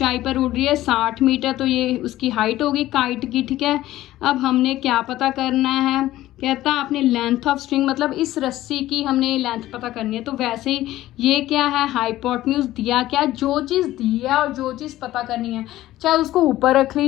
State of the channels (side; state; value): right; quieter; 15.2 dB